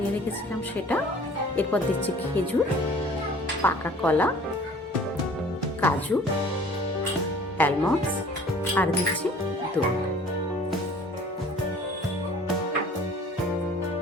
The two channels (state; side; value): normal; both; correlation 0.50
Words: রেখেছিলাম সেটা। এরপর দিচ্ছি খেজুর, পাকা কলা, কাজু, অ্যালমন্ডস আর দিচ্ছি দুধ।